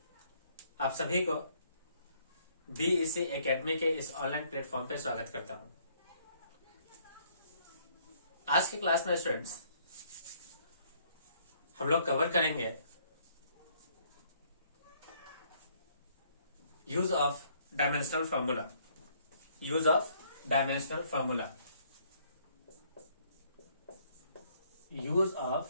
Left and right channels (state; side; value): inverted; both; correlation -0.65